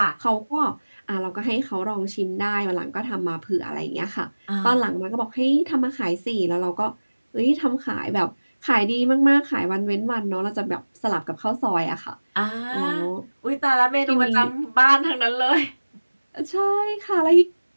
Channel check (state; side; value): inverted; both; correlation -1.00